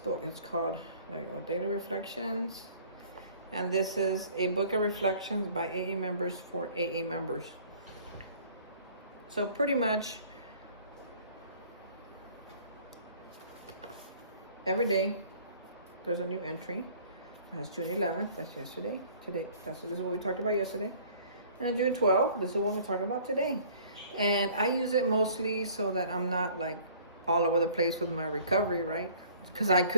It's called, there you go, Daily Reflections. And this is a book of reflections by AA members for AA members. So pretty much every day there's a new entry. That's June 11th, that's yesterday. Today, this is what we talked about yesterday. And June 12th, this is what we're talking about today. And I use it mostly so that I'm not like all over the place with my recovery, right? Because I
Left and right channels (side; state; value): both; inverted; correlation -0.53